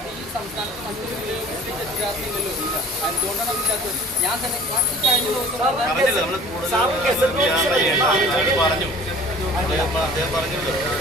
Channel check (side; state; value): both; normal; correlation 0.46